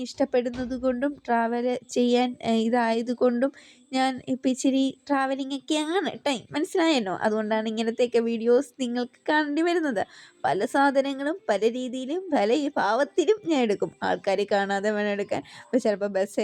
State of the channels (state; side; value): identical; both; correlation 1.00